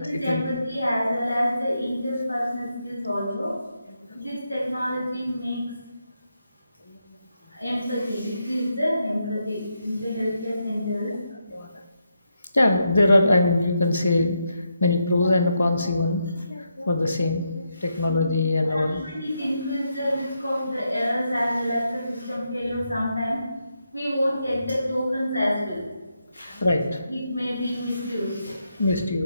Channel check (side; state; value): both; inverted; correlation -0.82